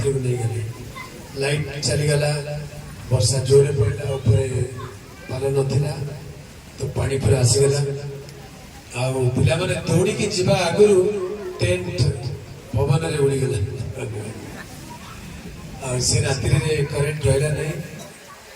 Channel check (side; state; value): both; identical; correlation 1.00